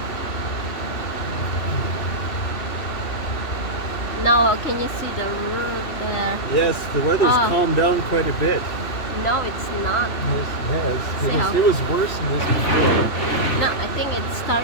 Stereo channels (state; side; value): late; right; 3.1 ms